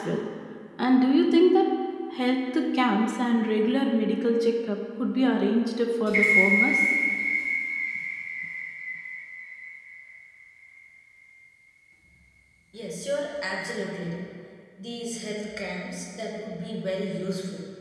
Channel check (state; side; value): identical; both; correlation 1.00